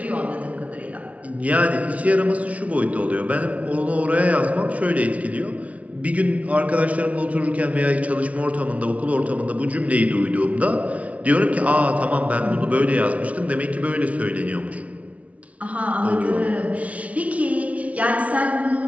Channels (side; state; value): left; late; 0.066 ms